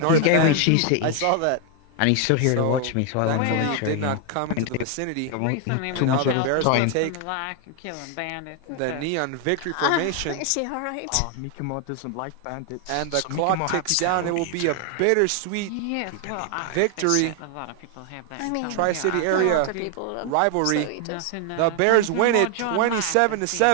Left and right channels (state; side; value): different; both; correlation 0.00